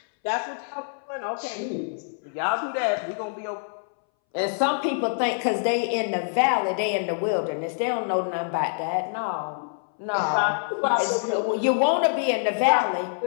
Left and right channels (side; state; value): right; silent; 61 dB below the other